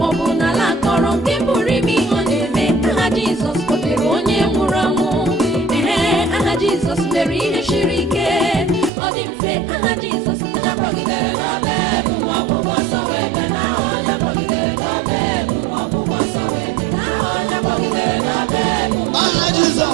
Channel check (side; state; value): left; drops out; at 8.9 s